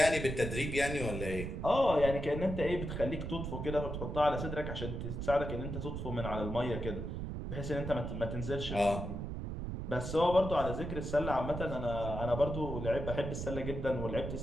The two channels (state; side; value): noise; right; rumble, 5 dB below the sound